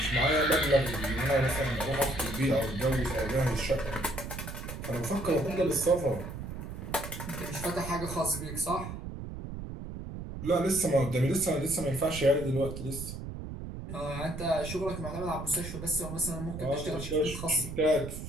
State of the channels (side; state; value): right; noise; rumble, 8 dB below the sound